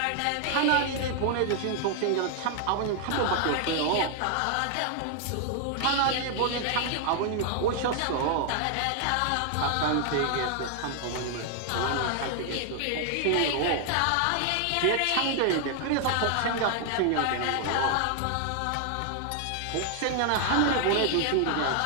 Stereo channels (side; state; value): both; different; correlation 0.00